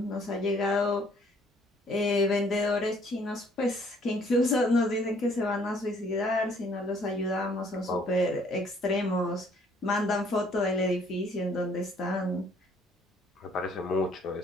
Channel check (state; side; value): normal; both; correlation 0.62